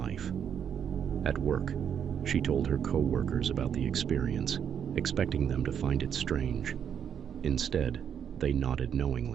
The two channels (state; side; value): quieter; left; 8.2 dB